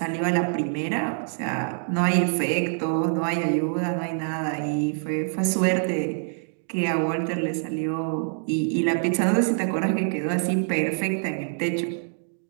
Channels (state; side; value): silent; left; digital silence